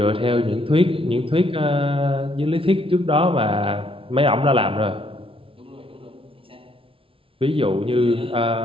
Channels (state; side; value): late; left; 0.26 ms